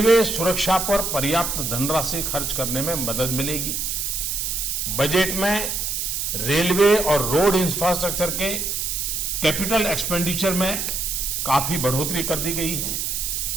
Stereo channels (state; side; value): noise; right; hiss, 1 dB below the sound